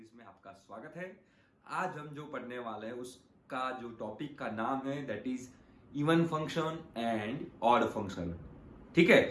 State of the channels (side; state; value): both; identical; correlation 1.00